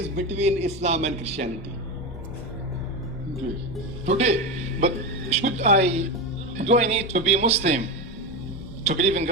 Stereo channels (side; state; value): both; normal; correlation 0.17